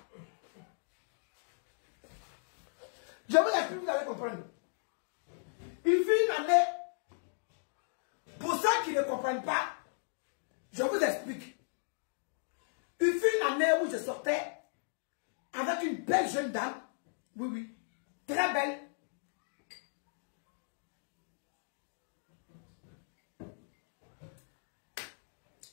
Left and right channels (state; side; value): silent; right; digital silence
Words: Je vous explique, vous allez comprendre. Il fut une année. Pour ceux qui ne comprennent pas, je vous explique. Il fut une année où je sortais avec une belle jeune dame. Oui, oui. Très belle.